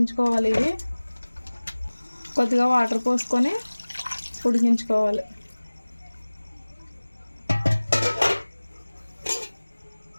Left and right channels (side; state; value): both; inverted; correlation -1.00